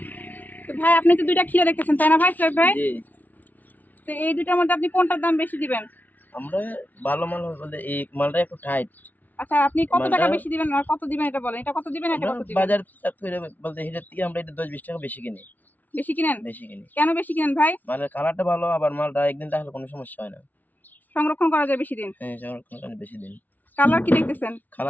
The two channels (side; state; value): right; late; 0.081 ms